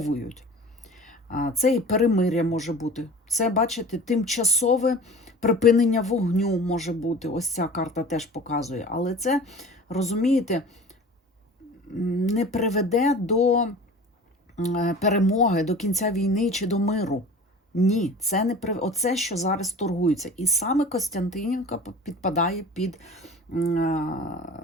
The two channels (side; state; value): both; normal; correlation 0.40